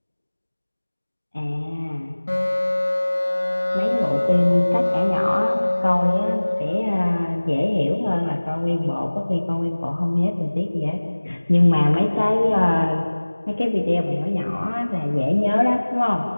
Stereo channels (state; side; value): inverted; both; correlation -1.00